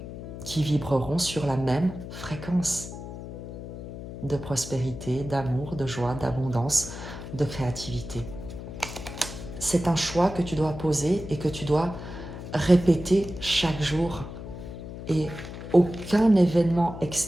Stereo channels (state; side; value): noise; left; hum, 10 dB below the sound